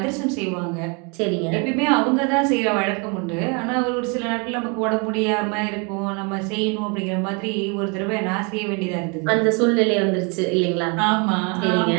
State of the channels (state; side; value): quieter; left; 33.0 dB